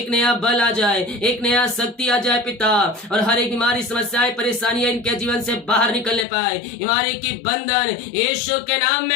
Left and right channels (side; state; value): right; drops out; at 6.2 s